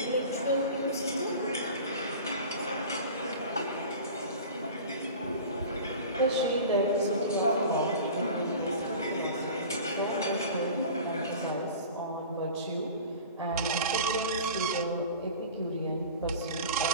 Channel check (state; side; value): inverted; both; correlation -0.38